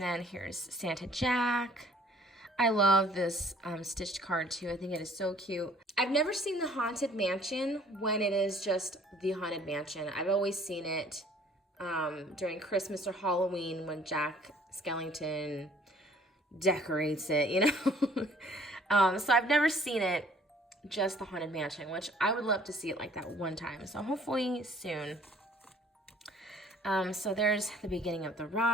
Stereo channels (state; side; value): normal; both; correlation 0.57